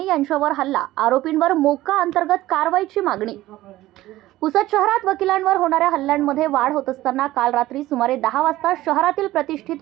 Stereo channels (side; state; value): left; quieter; 16.2 dB